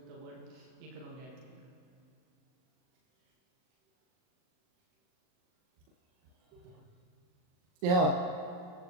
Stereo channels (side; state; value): left; late; 39 ms